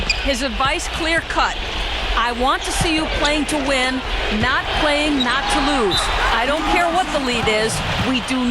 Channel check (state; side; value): identical; both; correlation 1.00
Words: His advice clear-cut. I want to see you playing to win, not playing not to lose. I don't care what the lead is. We do